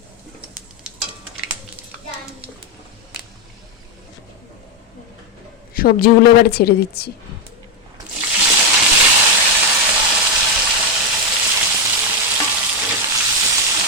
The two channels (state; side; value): normal; both; correlation 0.04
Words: সবজিগুলো এবারে ছেড়ে দিচ্ছি।